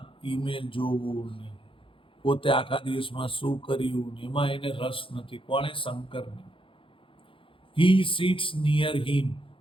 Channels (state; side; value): late; right; 0.25 ms